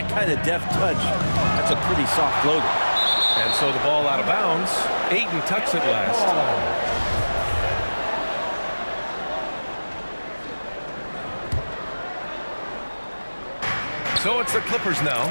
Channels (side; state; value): both; inverted; correlation -1.00